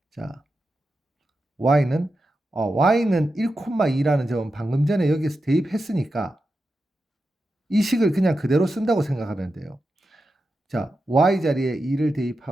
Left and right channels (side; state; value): both; normal; correlation 0.90